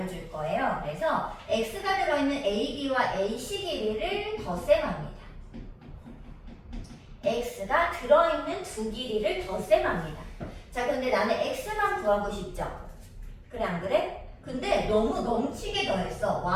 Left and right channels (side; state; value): both; identical; correlation 1.00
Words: 거예요. 그래서 x가 들어있는 AB와 AC 길이를 덧셈합니다. x가 들어있는 두 길이를 덧셈합니다. 자, 근데 나는 x만 구하고 싶죠? 그래 안 그래? 근데 너무 넘치게 더했어.